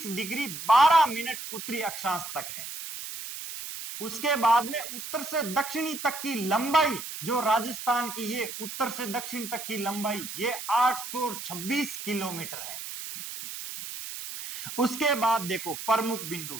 डिग्री 12 मिनट उत्तरी अक्षांश तक है। उसके बाद में उत्तर से दक्षिणी तक की लंबाई जो राजस्थान की, ये उत्तर से दक्षिण तक की लंबाई ये 826 किलोमीटर है। उसके बाद देखो प्रमुख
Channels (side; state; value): right; noise; hiss, 9 dB below the sound